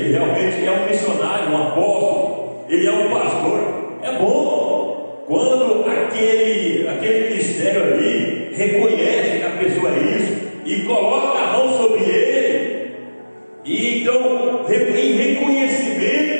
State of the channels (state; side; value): inverted; both; correlation -1.00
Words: realmente é um missionário, um apóstolo, ele é um pastor. É bom quando aquele ministério ali reconhece que a pessoa é isso e coloca a mão sobre ele, e então, em